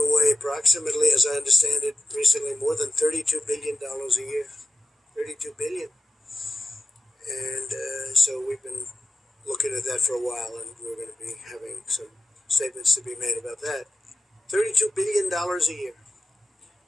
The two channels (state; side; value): normal; both; correlation 0.91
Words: approximately, as I understand it, recently more than $32 billion a year. $32 billion. And so we've been looking at that for a while, and we're going to be having some statements to be made about that. $32 billion a year.